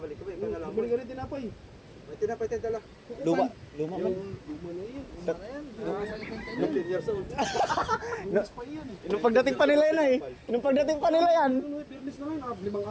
ka ba? Ikaw na lang. Balik ka rin tinapay. May tinapay tayo dala. Luma. Luma man. Luma na yun. Luma na yan. 15 years old. No, nung pagdating pa nila yan eh. Nung pagdating pa nila yan. Fitness na yun. 5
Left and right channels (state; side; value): identical; both; correlation 1.00